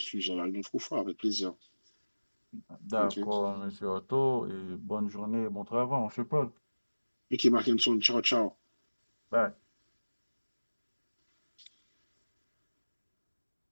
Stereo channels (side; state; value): both; inverted; correlation -1.00